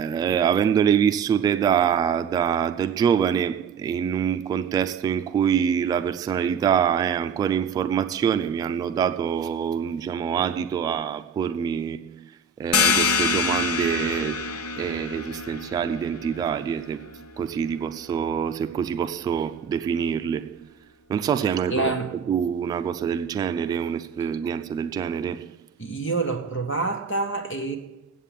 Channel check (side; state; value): left; quieter; 5.4 dB